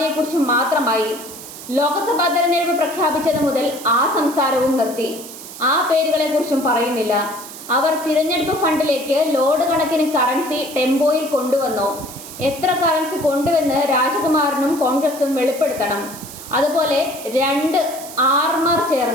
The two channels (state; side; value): noise; right; hiss, 14 dB below the sound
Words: മാത്രമായി. ലോക്സഭാ തെരഞ്ഞെടുപ്പ് പ്രഖ്യാപിച്ചത് മുതൽ ആ സംസാരവും നിർത്തി. ആ പേരുകളെ കുറിച്ചും പറയുന്നില്ല. അവർ തിരഞ്ഞെടുപ്പ് ഫണ്ടിലേക്ക് ലോഡ് കണക്കിന് കറൻസി ടെമ്പോയിൽ കൊണ്ടുവന്നോ, എത്ര കറൻസി കൊണ്ടുവന്ന് രാജകുമാരനും കോൺഗ്രസും വെളിപ്പെടുത്തണം. അതുപോലെ 2 ആർമാർ